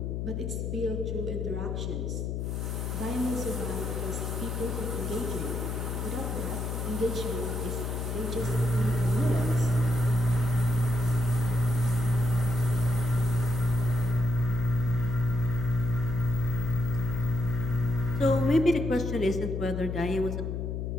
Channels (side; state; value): left; noise; hum, 2 dB below the sound